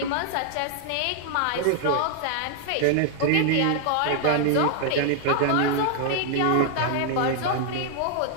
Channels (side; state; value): both; different; correlation 0.00